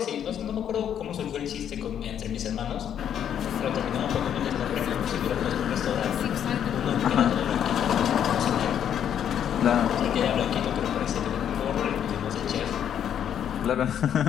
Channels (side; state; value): right; quieter; 9.3 dB